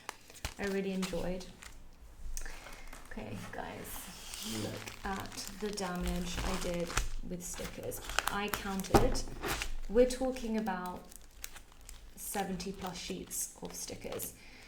I really enjoyed. Okay, guys, look at the damage I did with stickers. I counted, we're talking about 70 plus sheets of stickers.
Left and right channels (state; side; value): identical; both; correlation 1.00